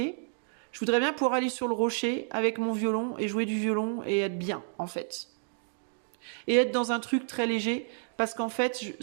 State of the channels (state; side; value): silent; left; digital silence